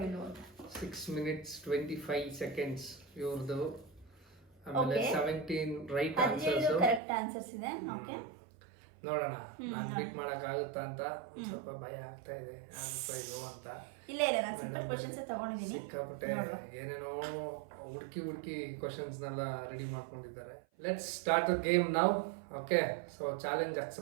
ಇಲ್ವೋ ಅಂತ. 6 minutes 25 seconds ಇವ್ರದ್ದು. ಆಮೇಲೆ 17 ರೈಟ್ ಆನ್ಸರ್ಸ್, ಕರೆಕ್ಟ್ ಆನ್ಸರ್ಸ್ ಇದೆ. ಓಕೆ, ನೋಡೋಣ ನಾನು ಬೀಟ್ ಮಾಡಕ್ಕಾಗುತ್ತಾ ಅಂತ ಸ್ವಲ್ಪ ಭಯ ಆಗ್ತಾ ಇದೆ. ಅನ್ಸೋ ಅಂತ ಇಲ್ಲ ನಾನು ಸಿಂಪಲ್ ಕ್ವಶನ್ಸ್ ತಗೊಂಡಿದ್ದೀನಿ. ಸಿಕ್ಕಾಪಟ್ಟೆ ಏನೇನೋ ಹುಡುಕಿ ಕ್ವಶನ್ಸ್ನೆಲ್ಲ ರೆಡಿ ಮಾಡ್ಕೊಂಡಿದ್ದಾರೆ. Let's start the game now. Okay, so challenge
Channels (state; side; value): drops out; left; at 7.0 s